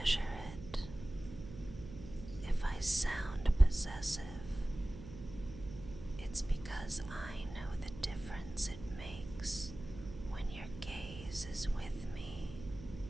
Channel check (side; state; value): right; noise; hum, 13 dB below the sound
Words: it. If I sound possessive, it's because I know the difference it makes when your gaze is with me.